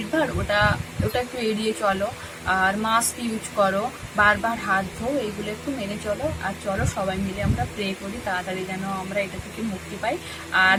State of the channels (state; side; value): identical; both; correlation 1.00